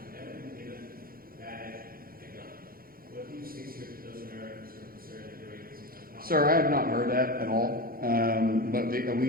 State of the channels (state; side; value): late; left; 0.42 ms